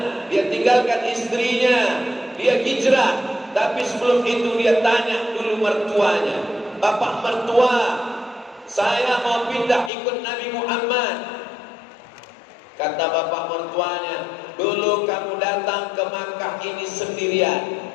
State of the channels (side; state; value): right; drops out; at 9.9 s